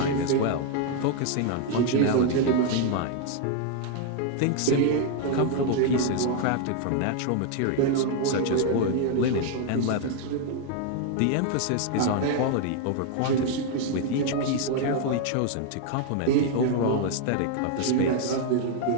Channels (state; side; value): different; both; correlation 0.00